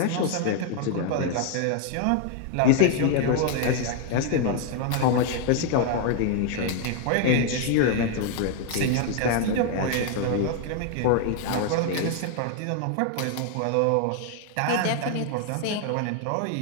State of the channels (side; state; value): both; different; correlation 0.00